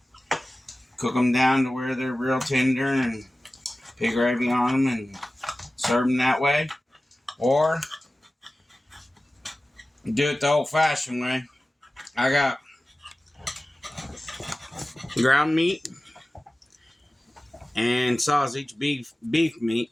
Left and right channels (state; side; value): normal; both; correlation 0.96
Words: cook them down to where they're real tender, and pig gravy on them, and serve them that way. Or do it the old-fashioned way. I got ground meat and sausage, beef meat,